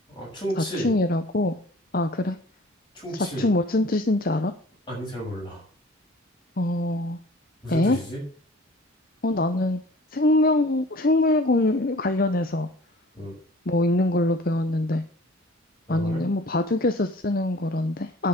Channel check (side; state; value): both; normal; correlation 0.48